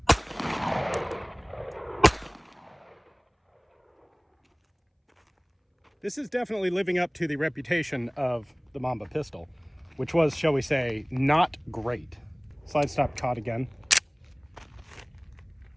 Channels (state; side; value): identical; both; correlation 1.00